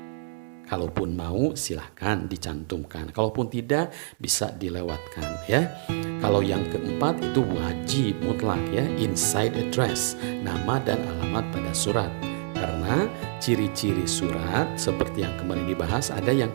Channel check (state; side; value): silent; left; digital silence